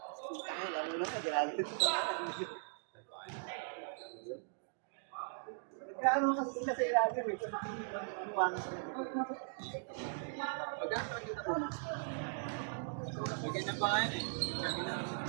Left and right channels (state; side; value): silent; left; digital silence